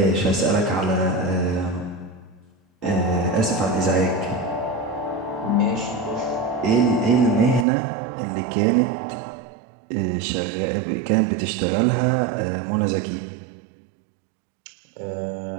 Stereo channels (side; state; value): left; drops out; at 7.7 s